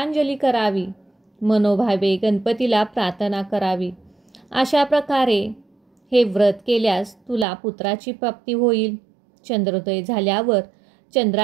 करावी, मनोभावे गणपतीला प्रार्थना करावी. अशा प्रकारे हे व्रत केल्यास तुला पुत्राची प्राप्ती होईल. चंद्रोदय झाल्यावर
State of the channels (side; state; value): left; drops out; at 7.5 s